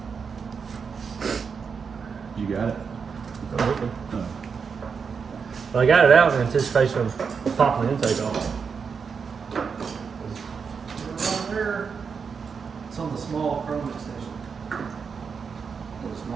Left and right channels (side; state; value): left; quieter; 5.9 dB